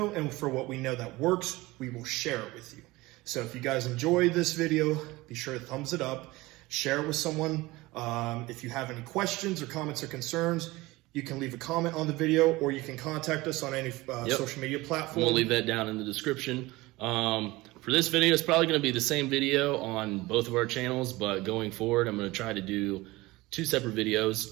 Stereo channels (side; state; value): left; quieter; 20.4 dB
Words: and for what we know that works, we will share it with you. So if you guys enjoyed this video, be sure to thumbs it up, share it with someone. If you have any questions or comments or concerns, you can leave a comment on the video, or you can contact us on any social media platform. We'll leave that down in the description. For this video, it's probably going to be the same video on both of our channels, but going forward, I'm going to try to do 2 separate